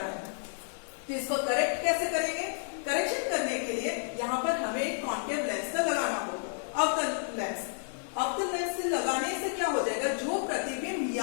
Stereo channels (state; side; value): silent; right; digital silence